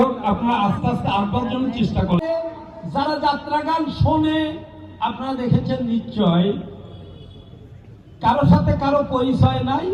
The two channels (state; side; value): identical; both; correlation 1.00